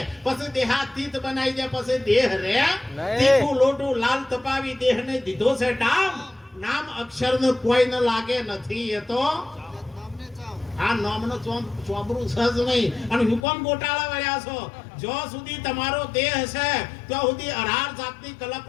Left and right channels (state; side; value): drops out; right; at 13.4 s